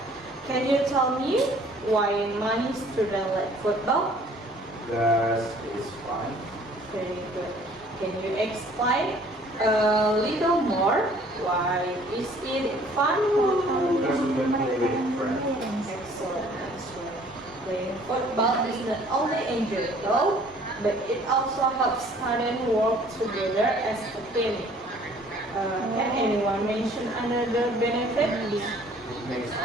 Can you tell me why many students like football? Because it's fun. Very good. Can you explain a little more? Why is it fun? Because we can play with friends. Excellent answer. Playing football is not only enjoyable, but it also helps students work together as a team. Can anyone mention another benefit? It makes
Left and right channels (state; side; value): normal; both; correlation 0.55